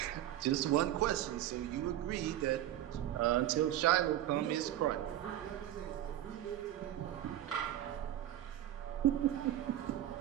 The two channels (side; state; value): left; quieter; 12.7 dB